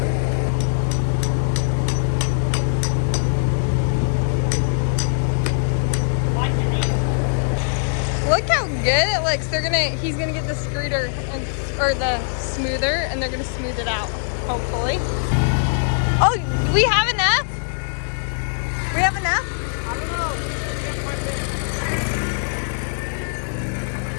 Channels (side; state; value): right; silent; digital silence